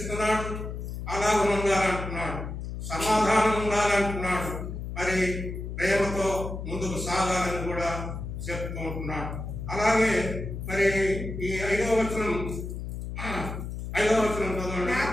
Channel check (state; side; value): noise; left; hum, 6 dB below the sound